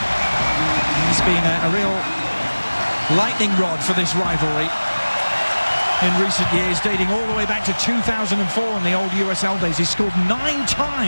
He's been a real lightning rod for this rivalry. in recent years, dating all the way back to 2004 in the old USL days. He scored 9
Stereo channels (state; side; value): inverted; both; correlation -1.00